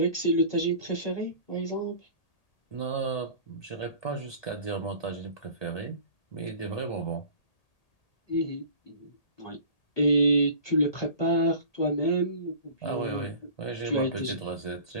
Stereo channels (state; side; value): late; right; 1.8 ms